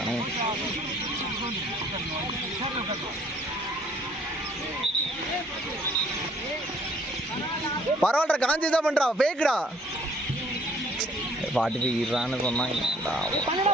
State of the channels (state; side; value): normal; both; correlation 0.60